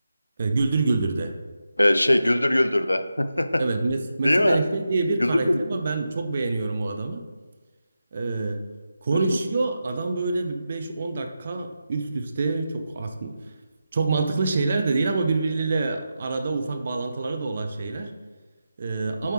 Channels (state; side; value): inverted; both; correlation -0.90